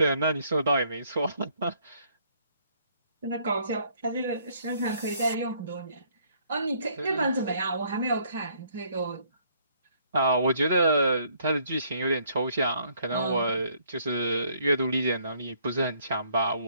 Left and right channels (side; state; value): both; inverted; correlation -0.65